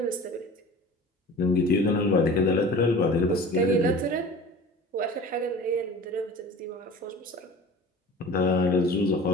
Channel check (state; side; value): normal; both; correlation 0.40